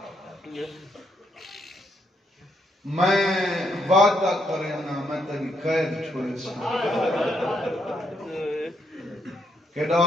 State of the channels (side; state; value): both; normal; correlation 0.76